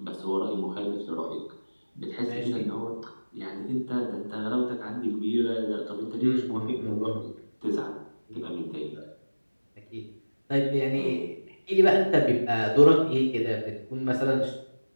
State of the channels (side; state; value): both; inverted; correlation -1.00